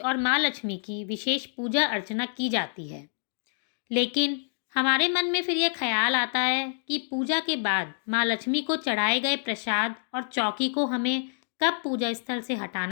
माँ लक्ष्मी की विशेष पूजा अर्चना की जाती है, लेकिन हमारे मन में फिर यह ख्याल आता है कि पूजा के बाद माँ लक्ष्मी को चढ़ाए गए प्रसाद और चौकी को हमें कब पूजा स्थल से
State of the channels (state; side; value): silent; right; digital silence